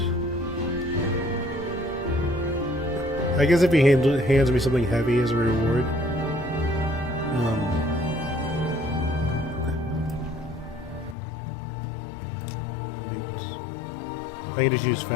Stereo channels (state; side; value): drops out; right; at 11.2 s